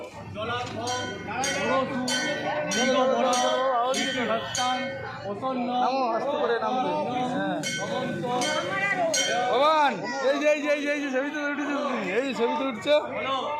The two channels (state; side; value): identical; both; correlation 1.00